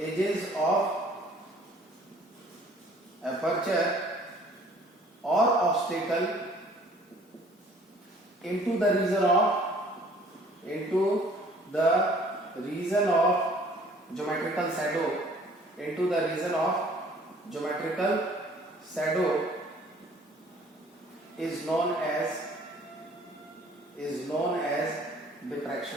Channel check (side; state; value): both; normal; correlation 0.55